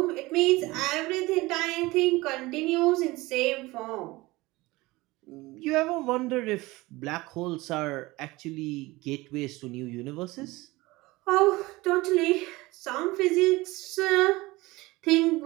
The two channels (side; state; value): left; quieter; 20.9 dB